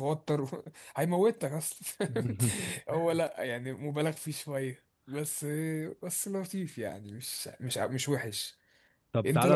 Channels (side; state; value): both; identical; correlation 1.00